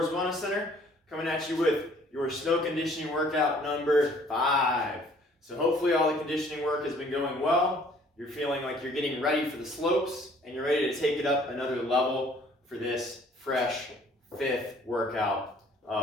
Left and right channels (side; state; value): both; normal; correlation 0.57